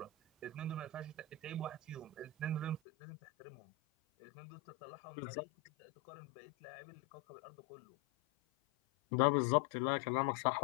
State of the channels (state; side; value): drops out; right; at 2.8 s